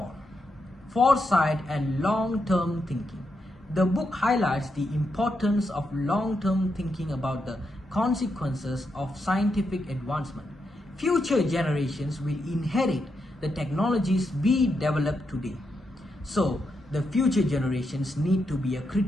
foresight and long-term thinking. The book highlights the importance of long-term thinking about the consequences of scientific advancement. Future generations will inherit the technologies we develop today. So, the future generations need to be a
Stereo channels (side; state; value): both; normal; correlation 0.83